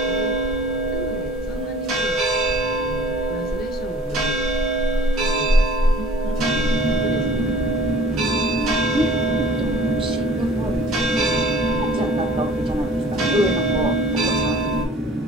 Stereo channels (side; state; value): both; normal; correlation 0.49